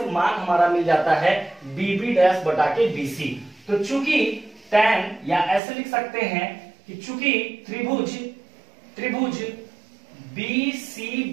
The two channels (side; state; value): left; drops out; at 5.6 s